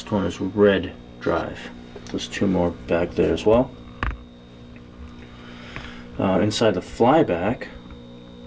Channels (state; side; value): identical; both; correlation 1.00